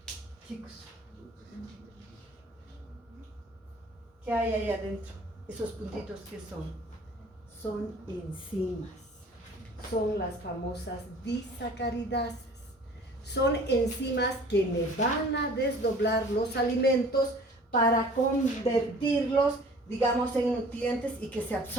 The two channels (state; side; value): normal; both; correlation 0.49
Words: Chicos, ¿qué hay ahí adentro? Esos puntitos, ¿qué son? Son enzimas. Son las famosas disacaridasas. Son enzimas que me van a desdoblar los alimentos para convertirlos, digamos, en nutrientes y que se